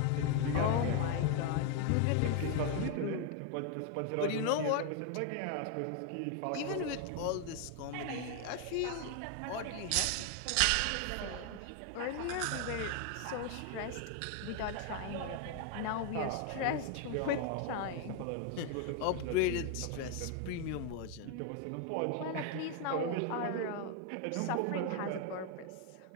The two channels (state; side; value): different; both; correlation 0.01